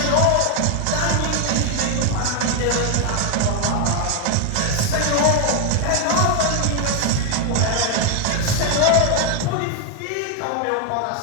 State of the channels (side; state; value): both; different; correlation 0.01